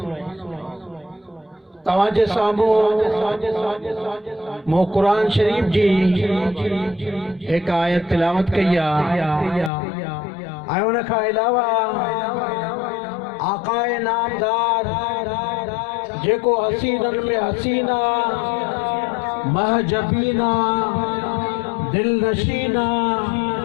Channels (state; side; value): drops out; right; at 9.7 s